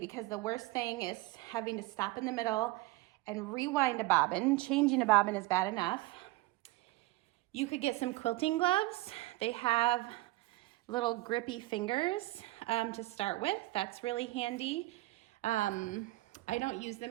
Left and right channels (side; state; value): left; quieter; 19.5 dB